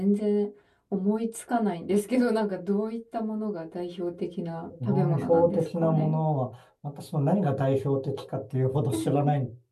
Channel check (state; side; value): identical; both; correlation 1.00